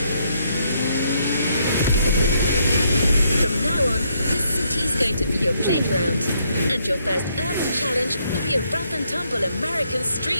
playground. And your first urban challenge will be a rough and tumble American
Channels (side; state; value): both; inverted; correlation -0.73